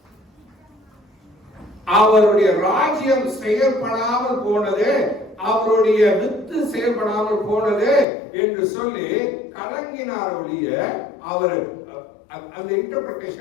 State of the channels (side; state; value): right; drops out; at 8.1 s